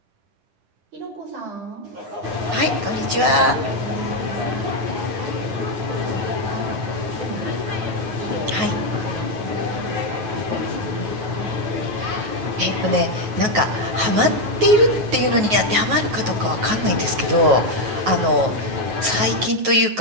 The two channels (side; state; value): left; late; 9.4 ms